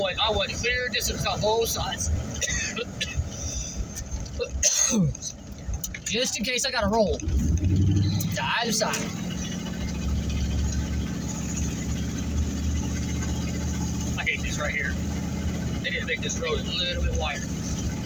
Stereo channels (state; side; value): identical; both; correlation 1.00